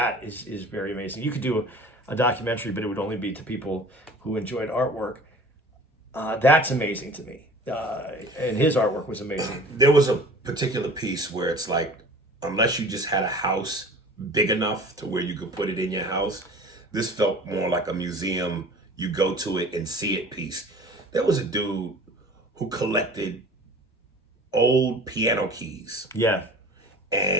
is very amazing. You could do a documentary, but it would only be to people who enjoyed artwork. That's amazing to me, and his artwork was amazing. There was a particular piece where it's like, unless you just had a house big enough to where you could put it in your house, this felt more like a museum. You go to it and see it piece. There was a dude who collected old piano keys. Yeah.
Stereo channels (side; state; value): both; normal; correlation 0.44